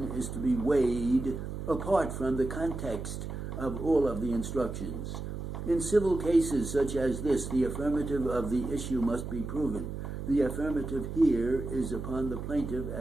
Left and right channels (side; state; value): right; noise; hum, 6 dB below the sound